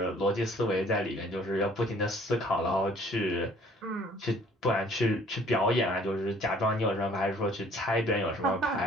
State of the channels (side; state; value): both; normal; correlation 0.56